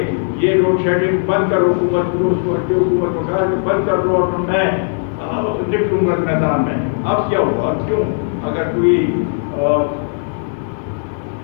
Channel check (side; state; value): right; silent; digital silence